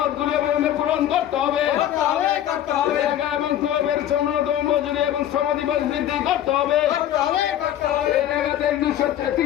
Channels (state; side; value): quieter; right; 11.5 dB